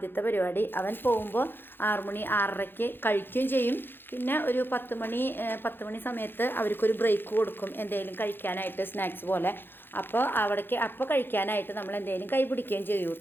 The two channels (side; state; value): right; late; 0.10 ms